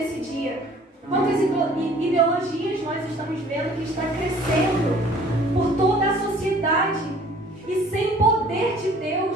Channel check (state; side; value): normal; both; correlation 0.53